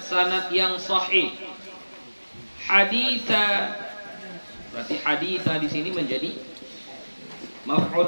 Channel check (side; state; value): both; inverted; correlation -1.00